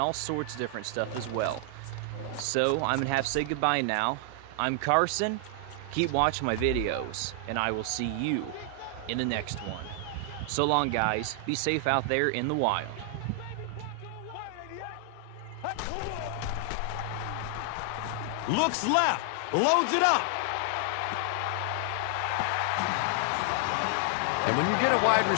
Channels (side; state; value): both; different; correlation 0.00